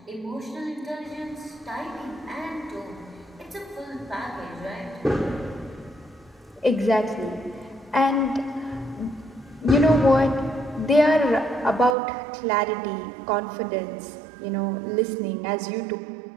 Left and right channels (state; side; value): drops out; left; at 12.0 s